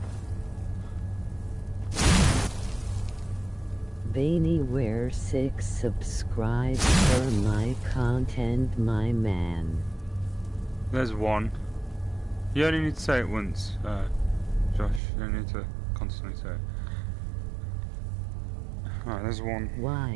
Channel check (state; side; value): drops out; left; at 15.0 s